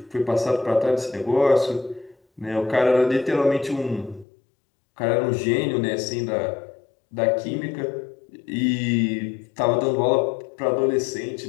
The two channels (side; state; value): right; drops out; at 4.2 s